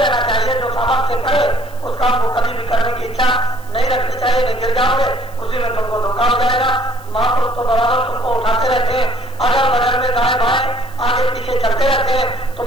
चाहिए। जो सामर्थ्य से करे उस काम को कभी भी करने की इच्छा नहीं रखनी चाहिए, नहीं गिर जाओगे, उसी में तुमको धोखा हो जाएगा। महापुरुष तो बराबर तुमको उठाते रहते हैं, अगल बगल में दाएं बाएं आगे पीछे चलते रहते हैं,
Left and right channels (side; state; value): right; noise; hiss, 26 dB below the sound